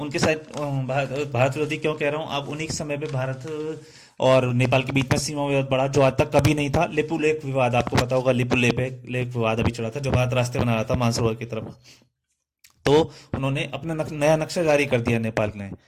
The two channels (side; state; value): both; identical; correlation 1.00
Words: साथ भारत विरोधी क्यों कह रहा हूँ, अब उन्हीं के समय पे भारत और नेपाल के बीच में सीमा विवाद बढ़ा, जो आज तक कभी नहीं था। लिपु लेक विवाद, आपको पता होगा, लिपु लेक विवाद अभी चला था, जो भारत रास्ते बना रहा था मानसरोवर की तरफ। तो उन्होंने अपना नया नक्शा जारी कर दिया नेपाल ने,